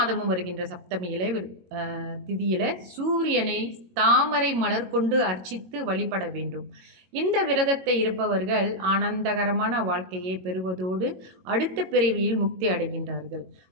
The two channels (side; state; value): left; late; 22 ms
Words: வருகின்ற சப்தமியில திதியில சூரியனை தாமரை மலர் கொண்டு அர்ச்சித்து வழிபட வேண்டும். இந்த விரதத்தை இருப்பவர்கள் ஆனந்தகரமான வாழ்க்கையை பெறுவதோடு அடுத்த பிறவியில் முக்தி அடைகின்றார்கள்.